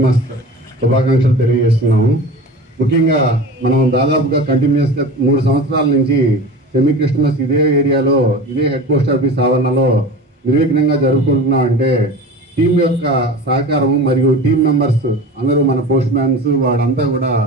శుభాకాంక్షలు తెలియజేస్తున్నాము. ముఖ్యంగా మనం దాదాపుగా కంటిన్యూస్గా 3 సంవత్సరాల నుంచి సెమీ క్రిస్మస్ ఇదే ఏరియాలో ఇదే హెడ్ పోస్ట్ ఆఫీస్ ఆవరణలో నిర్విఘ్నంగా జరుపుకుంటున్నాం. అంటే టీం యొక్క సహకారం మరియు టీం మెంబర్స్ అందరూ మన పోస్ట్ మ్యాన్స్ వాడంతా కూడా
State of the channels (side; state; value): both; normal; correlation 0.34